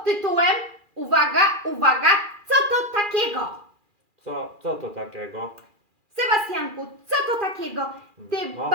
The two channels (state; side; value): late; left; 2.4 ms